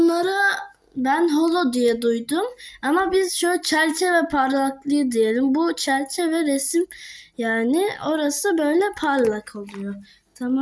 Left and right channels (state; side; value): identical; both; correlation 1.00